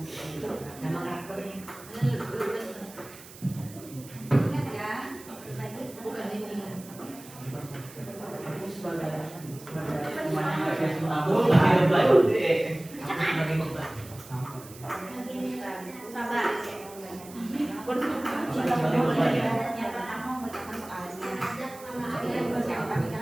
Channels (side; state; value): right; noise; hiss, 18 dB below the sound